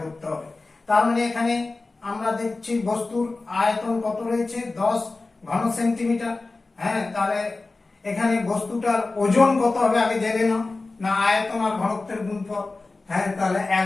করতে হবে। তার মানে এখানে আমরা দেখছি বস্তুর আয়তন কত রয়েছে, 10 ঘন সেন্টিমিটার। হ্যাঁ, তাহলে এখানে বস্তুটার ওজন কত হবে আগে জেনে নাও, না আয়তন আর ঘনত্বের গুণফল। হ্যাঁ, তাহলে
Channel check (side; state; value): right; quieter; 3.5 dB